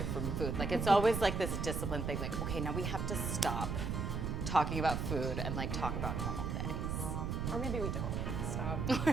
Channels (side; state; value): right; noise; rumble, 1 dB below the sound